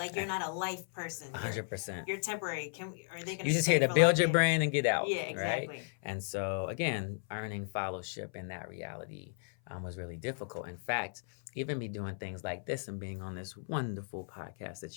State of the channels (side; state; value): right; silent; 54 dB below the other